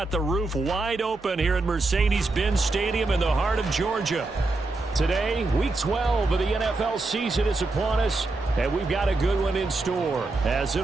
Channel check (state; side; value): quieter; left; 3.2 dB